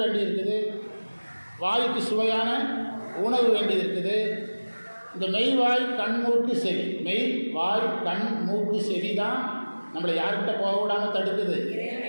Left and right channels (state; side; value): inverted; both; correlation -1.00